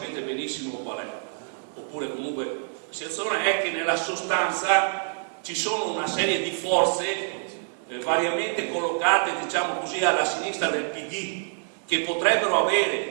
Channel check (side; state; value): left; silent; digital silence